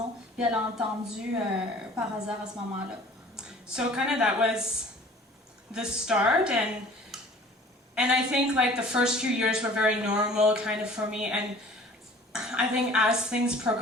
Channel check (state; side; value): normal; both; correlation 0.48